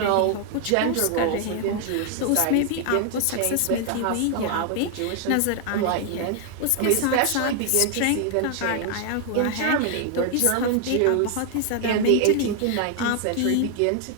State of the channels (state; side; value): different; both; correlation 0.00